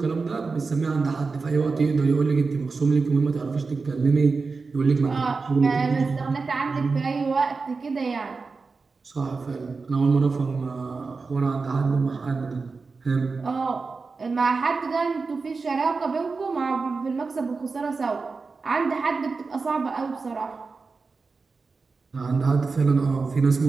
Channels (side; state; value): left; quieter; 4.4 dB